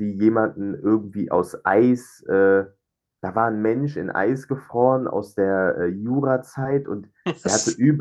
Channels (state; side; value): identical; both; correlation 1.00